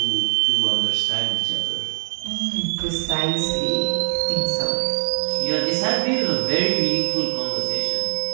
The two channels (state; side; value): silent; left; digital silence